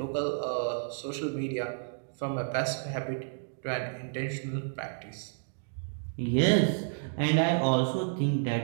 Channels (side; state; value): left; silent; digital silence